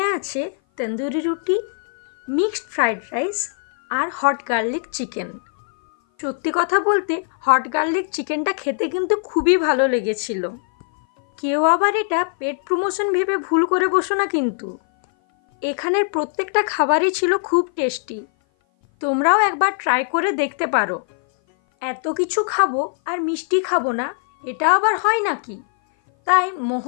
আছে তন্দুরি রুটি, মিক্সড ফ্রাইড রাইস আর হট গার্লিক চিকেন। সত্যি কথা বলতে হট গার্লিক চিকেনটা খেতে কিন্তু খুবই ভালো লেগেছিল। কেউ আবার এটা পেট প্রমোশন ভেবে ভুল করে বসো না কিন্তু। এখানের প্রত্যেকটা খাবারই ছিল খুব টেস্টি। তোমরাও একবার ট্রাই করে দেখতে পারো। এত কিছু খাবো আর মিষ্টি খাবো না, এটা আবার হয় নাকি? তাই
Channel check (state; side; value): silent; right; 57 dB below the other